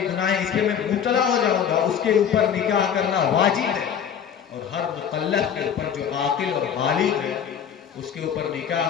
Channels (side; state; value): right; quieter; 8.1 dB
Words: گناہیں، اس میں مبتلا ہو جاؤں گا، اس کے اوپر نکاح کرنا واجب ہے. اور ہر مکلف کے اوپر جو عاقل اور بالغ ہے اس کے اوپر نکاح